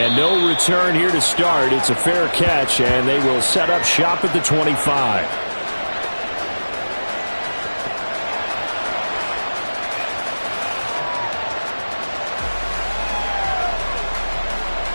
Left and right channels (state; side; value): inverted; both; correlation -1.00